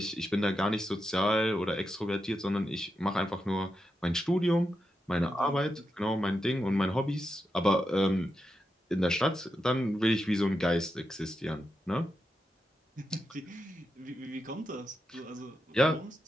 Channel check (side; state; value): both; normal; correlation 0.87